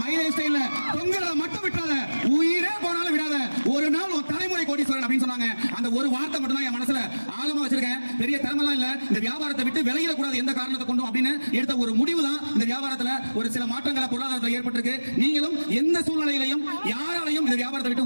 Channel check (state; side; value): inverted; both; correlation -1.00